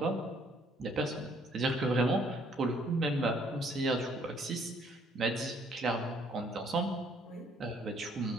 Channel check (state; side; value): normal; both; correlation 0.64